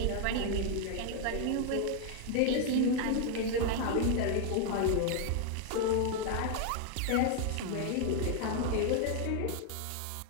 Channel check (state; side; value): different; both; correlation 0.00